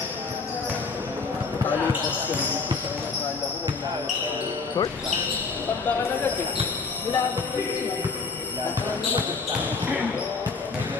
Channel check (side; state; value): right; quieter; 4.5 dB